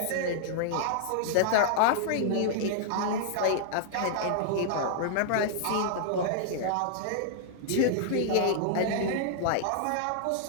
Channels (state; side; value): different; both; correlation -0.01